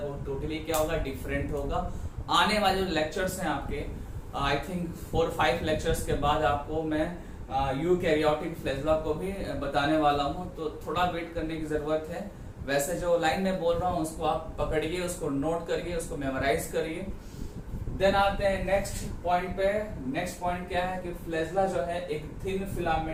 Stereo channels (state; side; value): identical; both; correlation 1.00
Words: वो टोटली क्या होगा, डिफरेंट होगा। आने वाले जो लेक्चर्स हैं आपके, आई थिंक 4-5 लेक्चर्स के बाद आपको मैं यूकैरियोटिक फ्लैजेला को भी बताने वाला हूं, तो थोड़ा वेट करने की जरूरत है। वैसे जो लाइन में बोल रहा हूं उसको आप पकड़िए, उसको नोट करिए, उसको मेमोराइज करिए। देन आते हैं नेक्स्ट पॉइंट पे। नेक्स्ट पॉइंट क्या है कि फ्लैजेला जो है एक थिन